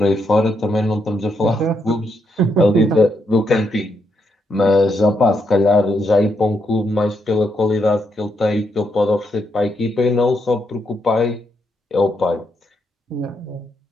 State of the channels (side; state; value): both; normal; correlation 0.79